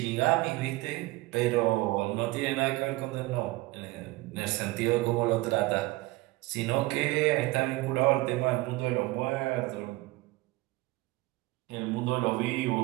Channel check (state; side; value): quieter; left; 20.5 dB